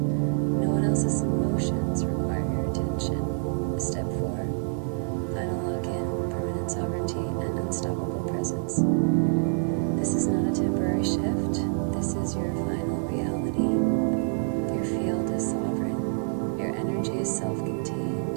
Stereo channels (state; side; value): silent; left; digital silence